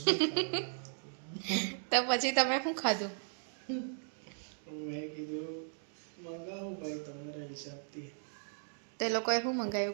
તો પછી તમે શું ખાધું? તો એ લોકોએ શું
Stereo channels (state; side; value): silent; left; digital silence